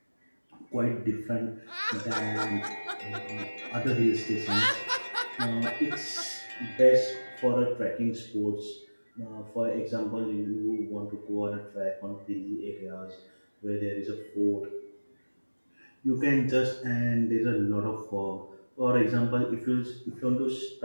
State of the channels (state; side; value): inverted; both; correlation -1.00